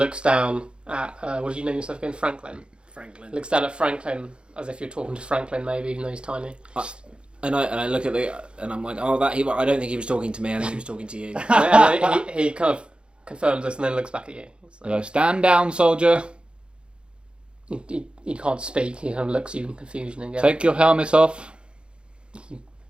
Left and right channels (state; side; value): late; left; 0.055 ms